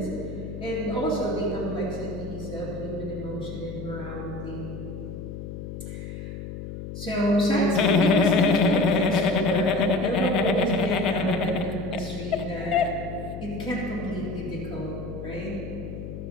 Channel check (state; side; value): noise; left; hum, 9 dB below the sound